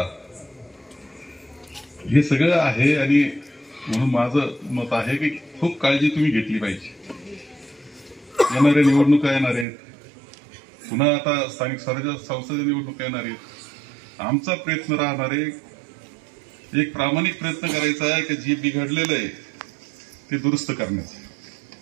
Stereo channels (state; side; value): drops out; left; at 9.7 s